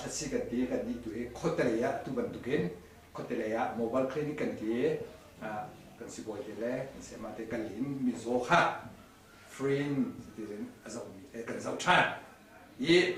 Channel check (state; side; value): identical; both; correlation 1.00